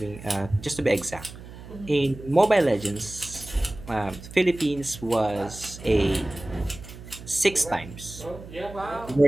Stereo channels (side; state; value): right; noise; hum, 15 dB below the sound